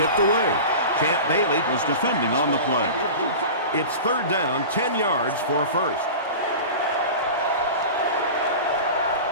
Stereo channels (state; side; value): inverted; both; correlation -0.32